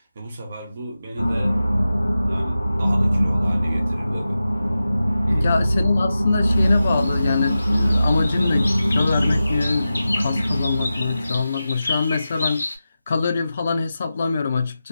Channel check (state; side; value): inverted; both; correlation -0.93